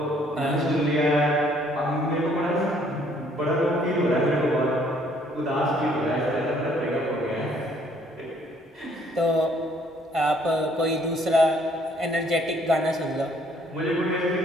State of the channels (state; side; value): normal; both; correlation 0.63